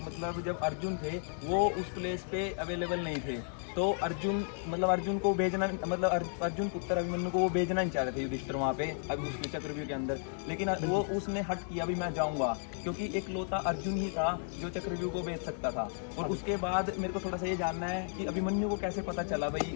मतलब जब अर्जुन थे वो उस प्लेस पे अवेलेबल नहीं थे। तो अर्जुन को भेजना, अर्जुन पुत्र अभिमन्यु को वो भेजना नहीं चाह रहे थे युधिष्ठिर वहाँ पे अभी उसके चक्रव्यूह के अंदर। लेकिन वो उसने हट किया, अभी मैं जाऊँगा, क्योंकि एक लौता अर्जुन ही था जो चक्रव्यूह को भेज सकता था। और उसके बाद मेरे को थोड़ा सा ये जानना है कि अभिमन्यु को कैसे पता चला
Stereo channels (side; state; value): right; silent; 55 dB below the other